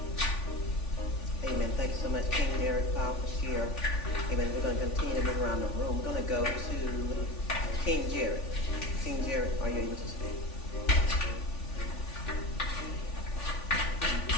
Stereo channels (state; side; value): late; right; 3.5 ms